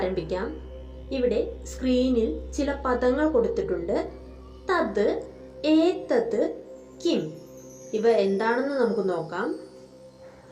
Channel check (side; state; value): both; identical; correlation 1.00